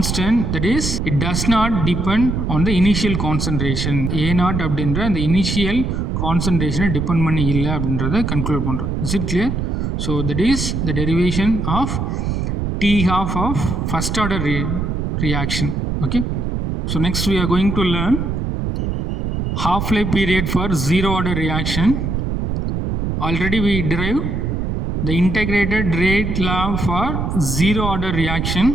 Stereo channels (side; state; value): right; noise; rumble, 1 dB below the sound